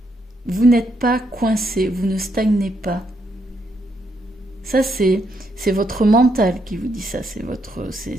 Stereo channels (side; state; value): both; normal; correlation 0.77